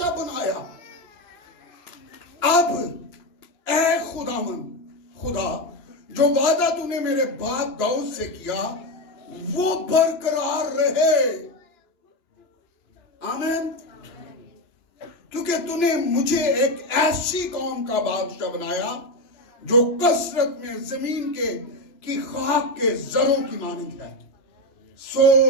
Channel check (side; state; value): right; late; 2.9 ms